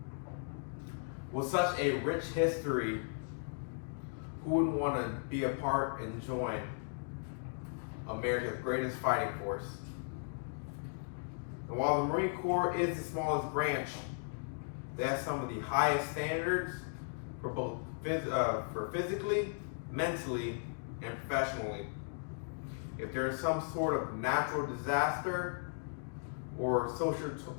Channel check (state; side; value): silent; right; digital silence